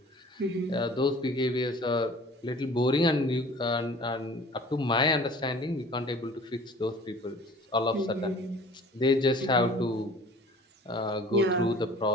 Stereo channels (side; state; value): both; normal; correlation 0.47